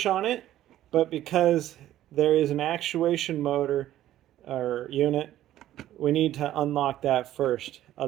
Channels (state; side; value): quieter; left; 13.1 dB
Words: on it, but because there is an actuation motor or unit, we need to unlock that first,